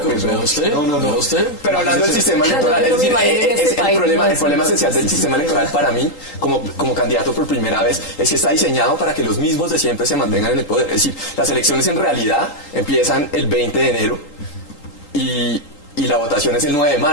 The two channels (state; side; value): late; right; 3.8 ms